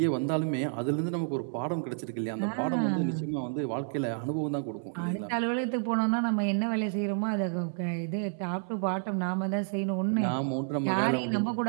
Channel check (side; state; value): left; silent; 58 dB below the other